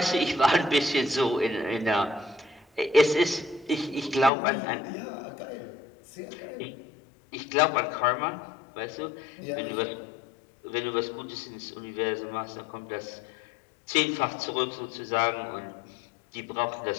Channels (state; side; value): drops out; right; at 4.3 s